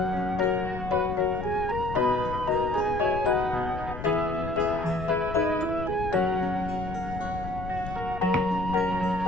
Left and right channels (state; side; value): noise; left; rumble, 9 dB below the sound